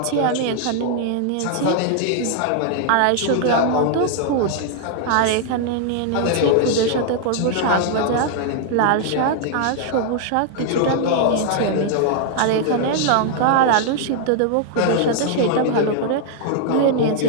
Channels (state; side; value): different; both; correlation -0.01